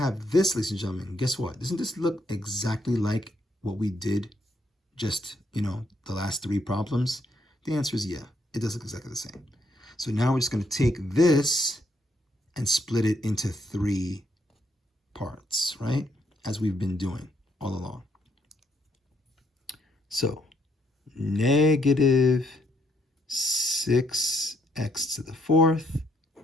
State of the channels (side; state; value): both; normal; correlation 0.73